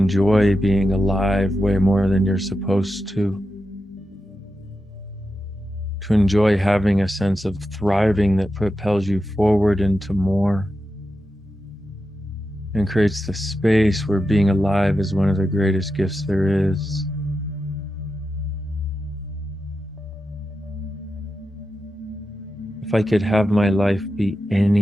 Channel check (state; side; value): normal; both; correlation 0.89